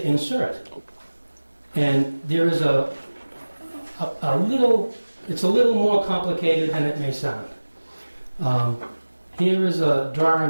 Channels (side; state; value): both; inverted; correlation -1.00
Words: insert. And there is a little, it's a little more complicated than it may sound. Here is a